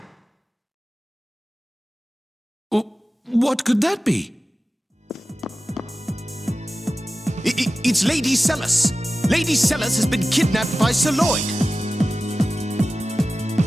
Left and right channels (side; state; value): both; normal; correlation 0.95